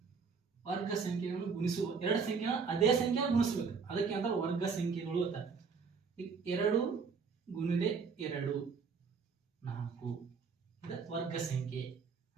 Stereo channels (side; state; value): left; quieter; 5.4 dB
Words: ವರ್ಗ ಸಂಖ್ಯೆಗಳನ್ನು ಗುಣಿಸುವ ಎರಡು ಸಂಖ್ಯೆಗಳ ಅದೇ ಸಂಖ್ಯೆ ಗುಣಿಸ್ಬೇಕು, ಅದಕ್ಕೆ ಅಂತ ವರ್ಗ ಸಂಖ್ಯೆಗಳು ಅಂತ. ಈಗ 2 ಗುಣಿಲೆ 2 4 ಇದು ವರ್ಗ ಸಂಖ್ಯೆ.